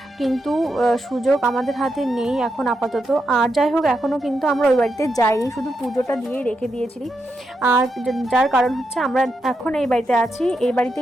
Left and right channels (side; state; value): both; normal; correlation 0.84